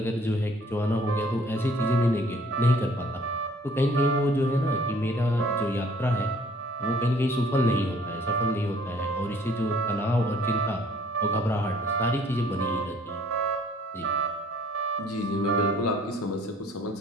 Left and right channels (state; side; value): normal; both; correlation 0.57